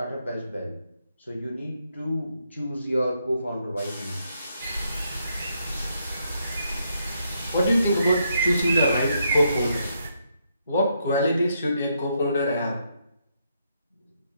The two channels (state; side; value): inverted; both; correlation -0.77